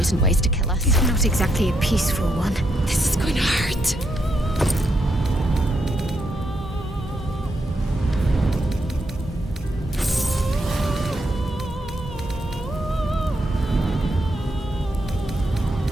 ways to kill us. It's not exactly a peaceful one. This is going to hurt.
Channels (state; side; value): normal; both; correlation 0.79